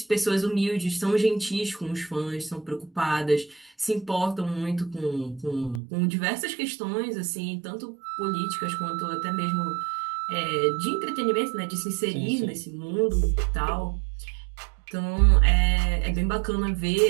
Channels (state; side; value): drops out; left; at 5.8 s